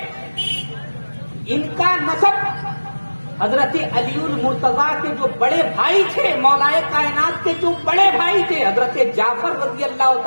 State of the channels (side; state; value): both; inverted; correlation -1.00